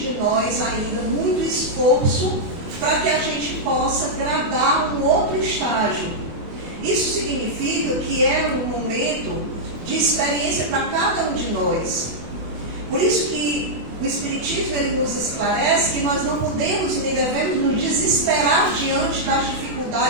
nós ainda muito esforço para que a gente possa gradar um outro estágio. Isso significa que é um momento de experiência para cada um de nós. Por isso que o Espiritismo ele nos esclarece que nós não podemos nem devemos nos desesperar diante das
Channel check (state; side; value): late; left; 24 ms